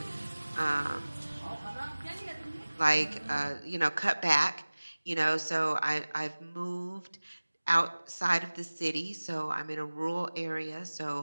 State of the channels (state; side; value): inverted; both; correlation -1.00